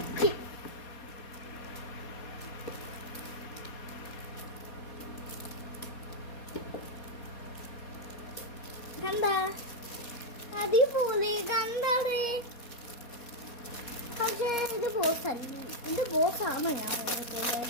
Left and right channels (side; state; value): right; late; 4.2 ms